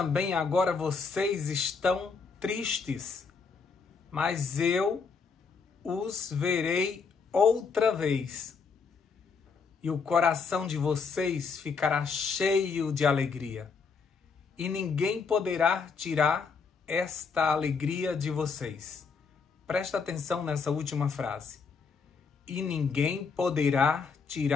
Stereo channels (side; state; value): right; quieter; 5.2 dB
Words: agora vocês estão tristes, mas eu os verei outra vez, e o coração de vocês ficará cheio de alegria, e ninguém poderá tirar esta alegria de vocês. Presta atenção nessa última frase. E ninguém poderá